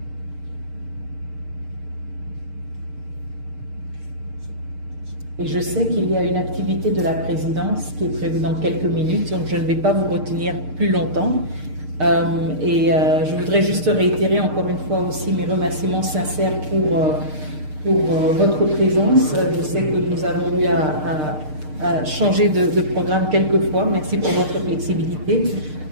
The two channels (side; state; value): left; late; 6.6 ms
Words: Et je sais qu'il y a une activité de la présidence qui est prévue dans quelques minutes, donc je ne vais pas vous retenir plus longtemps. Je voudrais juste réitérer encore une fois aussi mes remerciements sincères pour votre présence. Je sais que nous avons eu à changer de programme quelques fois. Merci pour votre flexibilité.